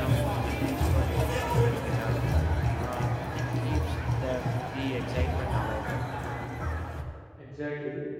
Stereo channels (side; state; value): both; identical; correlation 1.00